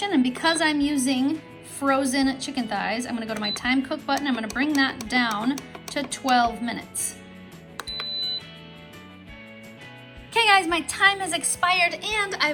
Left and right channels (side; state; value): both; identical; correlation 1.00